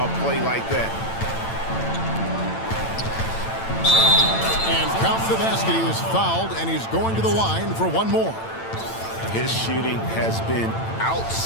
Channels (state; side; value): late; right; 8.9 ms